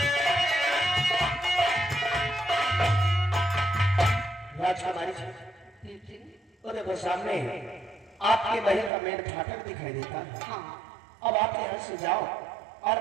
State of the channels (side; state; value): left; drops out; at 8.9 s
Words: राजकुमारी जी, और देखो सामने आपके महल का मेन फाटक दिखाई देता है। हाँ। अब आप यहाँ से जाओ